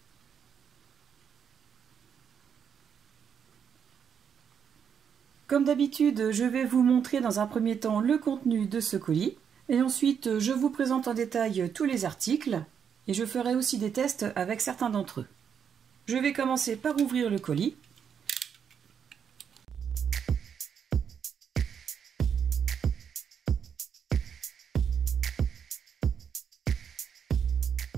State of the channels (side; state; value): left; quieter; 7.5 dB